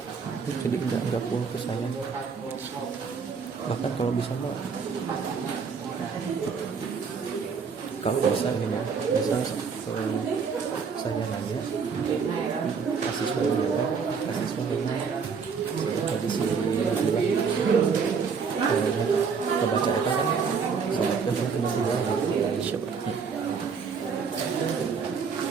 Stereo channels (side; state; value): left; quieter; 5.8 dB